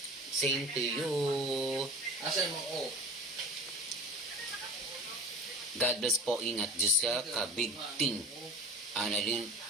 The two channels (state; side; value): normal; both; correlation 0.38